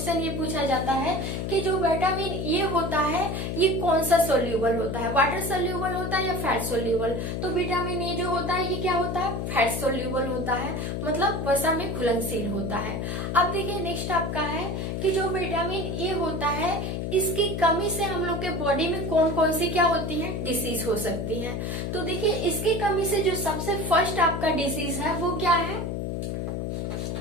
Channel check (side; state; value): left; noise; hum, 3 dB below the sound